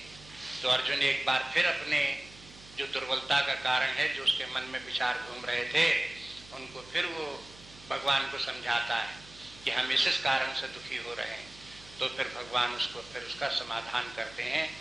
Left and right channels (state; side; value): noise; right; hum, 20 dB below the sound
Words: तो अर्जुन एक बार फिर अपने जो दुर्बलता का कारण है, जो उसके मन में विचार घूम रहे थे, उनको फिर वो भगवान को समझाता है कि हम इस कारण से दुखी हो रहे हैं। तो फिर भगवान उसको फिर उसका समाधान करते हैं,